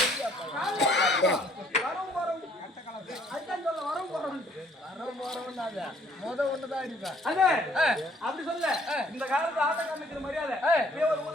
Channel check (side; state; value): both; normal; correlation 0.62